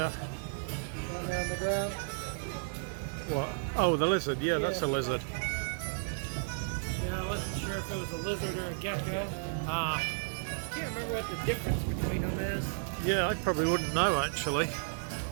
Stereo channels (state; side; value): silent; left; 55 dB below the other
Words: Down there on the ground? What? Oh, the lizard. Yeah, that's a lizard. Yeah, I wasn't sure if it was a lizard or a gecko. Ah. I can't remember what the difference between them is. Yeah, I probably wouldn't know actually. Need